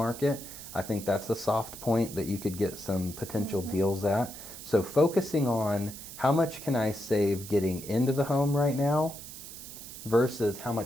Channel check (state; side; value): noise; right; hiss, 13 dB below the sound